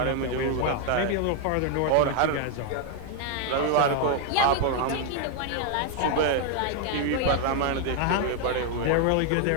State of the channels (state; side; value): different; both; correlation 0.01